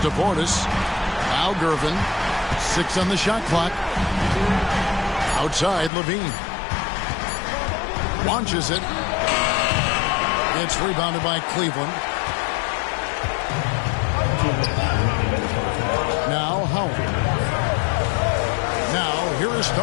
Portis. Al Gervin. 6 on the shot clock. Outside Levine. Launches it. It's rebounded by Cleveland. Now Howard. Now here is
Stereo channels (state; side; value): drops out; right; at 5.9 s